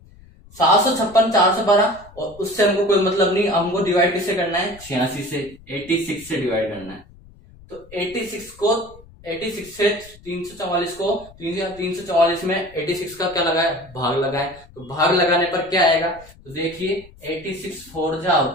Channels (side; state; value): left; noise; rumble, 23 dB below the sound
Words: 756 412 और उससे हमको कोई मतलब नहीं, हमको डिवाइड किससे करना है, 86 से, 86 से डिवाइड करना है। तो 86 से 344 को 344 में 86 का क्या लगाए, भाग लगाए। तो भाग लगाने पर क्या आएगा, तो देखिए 86 4 जा